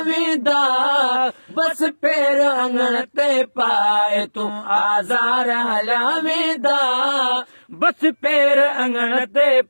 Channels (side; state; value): both; inverted; correlation -1.00